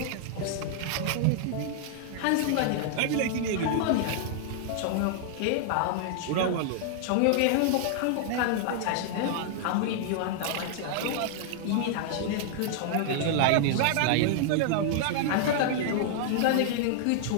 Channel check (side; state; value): both; different; correlation -0.01